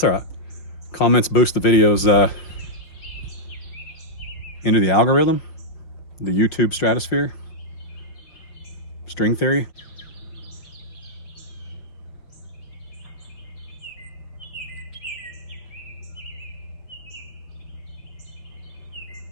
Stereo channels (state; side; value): late; right; 6.1 ms